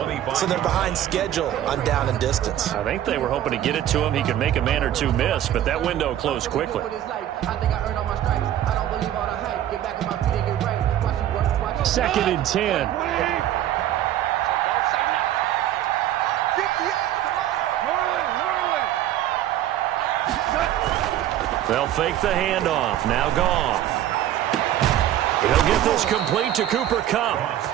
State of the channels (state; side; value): quieter; left; 12.0 dB